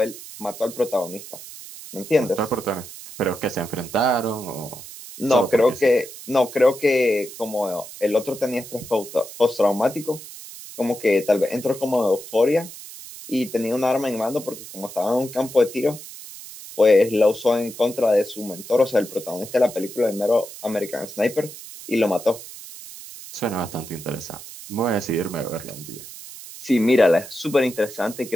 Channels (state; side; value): noise; right; hiss, 14 dB below the sound